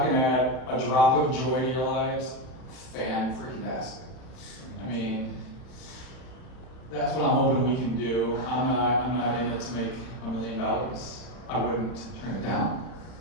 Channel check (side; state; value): right; late; 31 ms